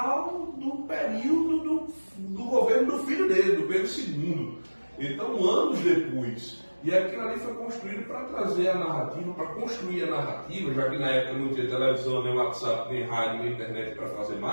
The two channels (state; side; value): inverted; both; correlation -1.00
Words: do período do governo do filho dele, do Pedro II. Então, anos depois. E aquilo ali foi construído para trazer a narrativa, para construir a narrativa, já que na época não tinha televisão, nem WhatsApp, nem rádio, nem internet para fazer